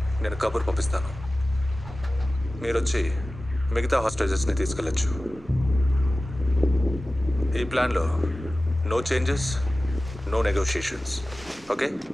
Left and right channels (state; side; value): normal; both; correlation 0.96